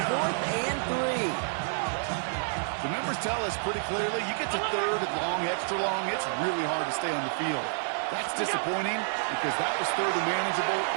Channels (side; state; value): left; silent; digital silence